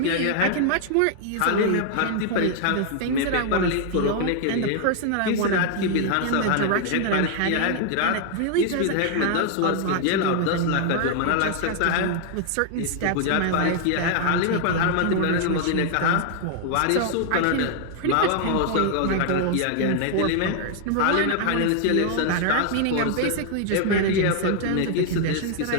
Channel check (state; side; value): different; both; correlation 0.00